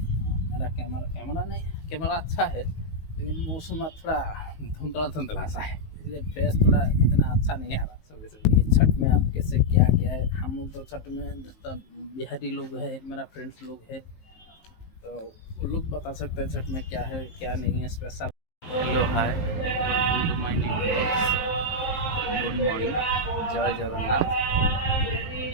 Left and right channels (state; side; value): late; right; 19 ms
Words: मेरा कैमरा अच्छा है, लेकिन मौसम थोड़ा धुंधला सा है, इसलिए फेस थोड़ा इतना अच्छा नहीं आ रहा सुबह सुबह। ये छठ में आप कैसे क्या क्या है, हम लोग तो छठ में जितना बिहारी लोग है, मेरा फ्रेंड्स लोग है, तो वो लोग बता सकते हैं छठ में क्या है क्या नहीं है special. Hello hi, welcome to my new blogs. Good morning. जय जगन्नाथ।